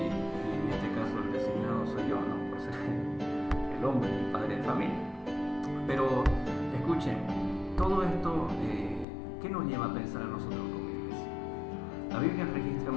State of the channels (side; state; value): right; drops out; at 9.1 s